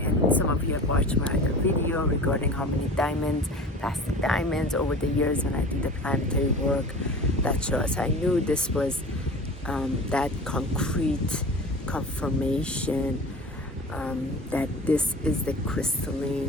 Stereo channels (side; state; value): both; normal; correlation 0.37